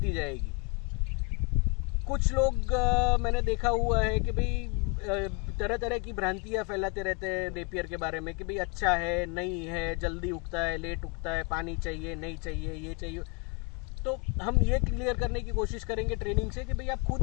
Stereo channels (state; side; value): quieter; right; 33.3 dB